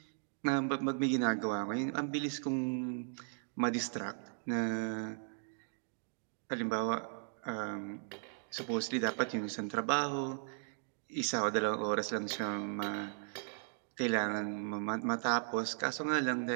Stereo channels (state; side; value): silent; left; digital silence